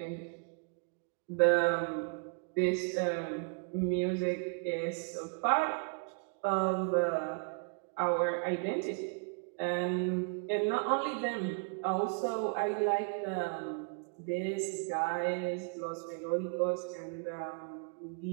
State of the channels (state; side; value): quieter; left; 37.2 dB